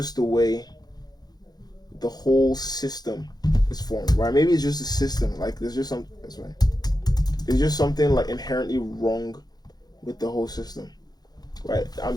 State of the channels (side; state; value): right; late; 0.19 ms